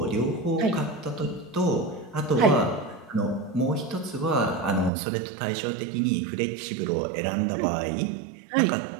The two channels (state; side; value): drops out; left; at 4.9 s